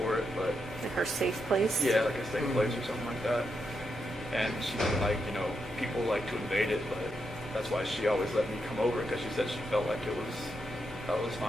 it, but. Like her safe place? Yeah, like a safe place or something like that. And she didn't like, people like to invade it, but that's why she always let me come over, because she said she felt like that was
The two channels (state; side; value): normal; both; correlation 0.83